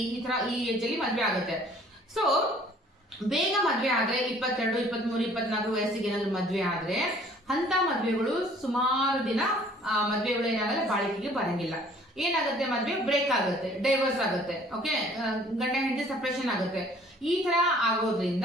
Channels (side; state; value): both; normal; correlation 0.55